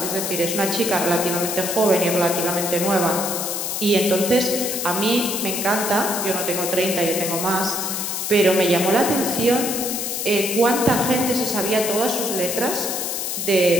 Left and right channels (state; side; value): noise; left; hiss, 3 dB below the sound